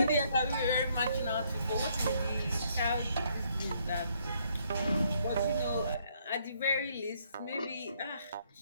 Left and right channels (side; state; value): both; inverted; correlation -0.69